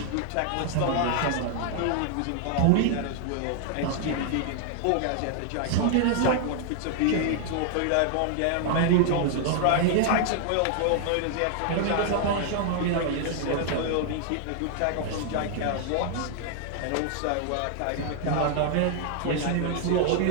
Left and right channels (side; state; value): both; different; correlation 0.00